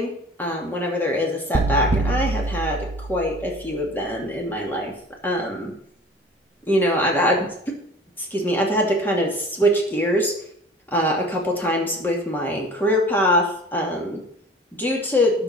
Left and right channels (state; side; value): normal; both; correlation 0.44